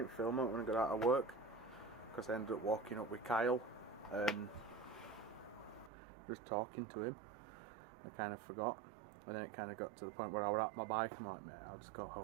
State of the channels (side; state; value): left; drops out; at 5.9 s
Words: film it when I got out of work, because I ended up walking up with Kyle and just talking to him. I kind of forgot. And then it kind of got to the point where I was at my bike. I'm like, mate, I'll just go